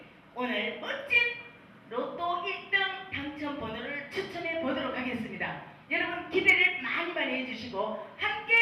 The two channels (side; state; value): both; identical; correlation 1.00